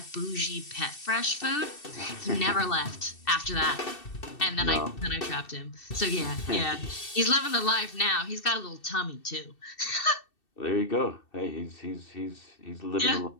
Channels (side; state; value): right; late; 2.7 ms